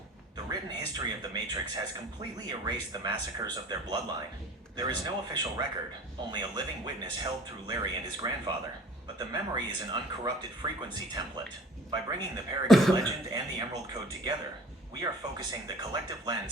The written history of the Matrix has completely erased the massacres of their bloodline. There is no official record, only a living witness held through Larry and his grandfather. But the memory is an uncorrupted frequency template. By bringing the Parakeet legend and the Emerald Code together, we are focusing the collective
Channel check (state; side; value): normal; both; correlation 0.47